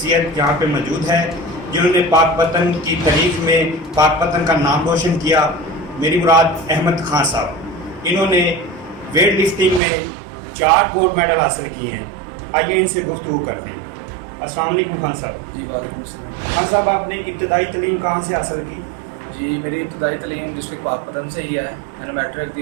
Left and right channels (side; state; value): left; drops out; at 9.8 s